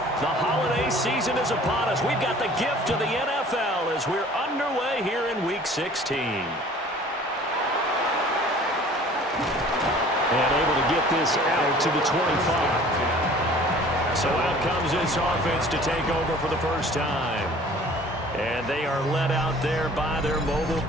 The holiday season is upon us. We've got the gift of the NFL as we're underway here in Week 16. And able to get this out to the 25. So out comes this offense to take over for the first time. And they are led out there by their mobile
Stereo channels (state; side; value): normal; both; correlation 0.49